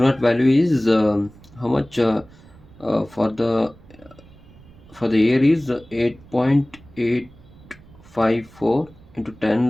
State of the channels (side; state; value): right; noise; rumble, 24 dB below the sound